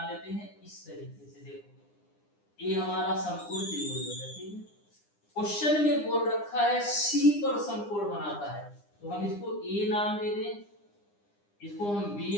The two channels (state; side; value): late; right; 9.8 ms